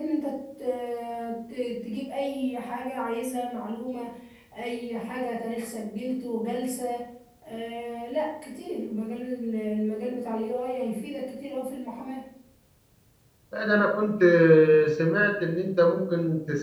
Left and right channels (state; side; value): identical; both; correlation 1.00